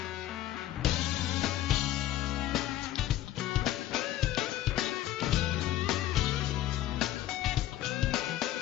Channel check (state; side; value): quieter; right; 13.5 dB